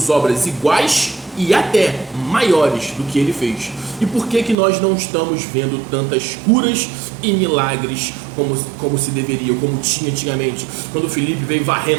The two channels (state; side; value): drops out; left; at 4.5 s